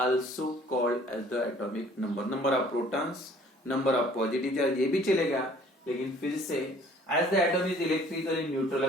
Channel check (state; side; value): normal; both; correlation 0.55